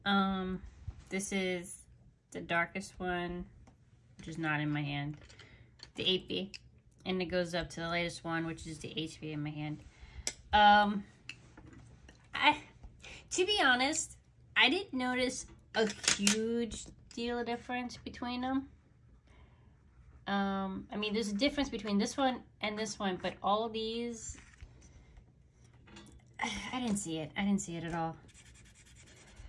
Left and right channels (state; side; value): identical; both; correlation 1.00